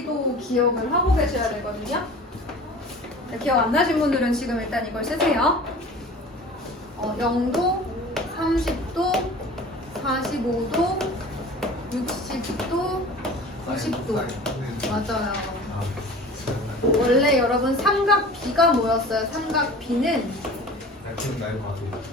기억을 하고 계셔야 되거든요. 자, 기억 안 나신 분들은 지금 일단 이걸 쓰세요. 0도, 30도, 45도, 60도, 90도. 맞아요. 원래 여러분 삼각비가 뭐였어요?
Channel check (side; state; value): both; normal; correlation 0.41